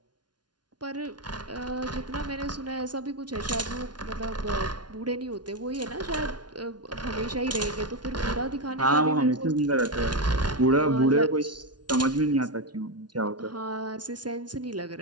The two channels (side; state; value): left; late; 0.70 ms